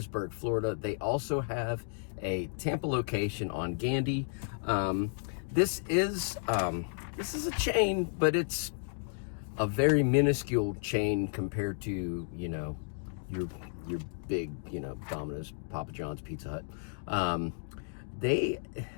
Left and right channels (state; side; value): silent; right; digital silence